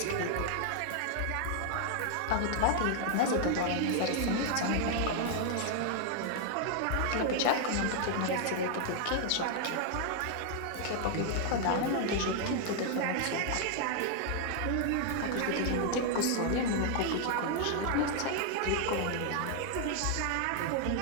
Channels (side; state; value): both; different; correlation 0.00